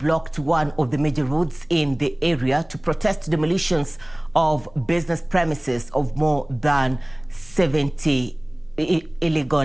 one of the major roads in the area to protest demolitions of business premises of more than 70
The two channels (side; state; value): right; noise; hum, 27 dB below the sound